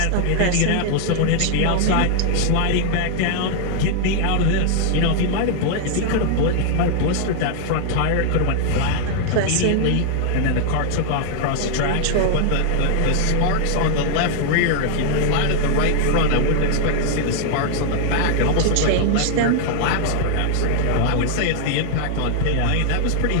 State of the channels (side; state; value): both; different; correlation 0.00